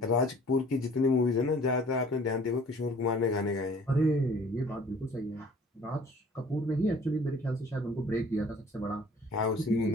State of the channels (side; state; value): both; normal; correlation 0.52